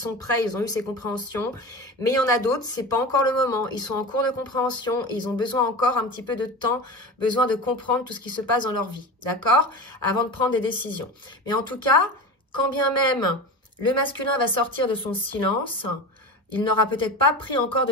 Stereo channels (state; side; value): normal; both; correlation 0.29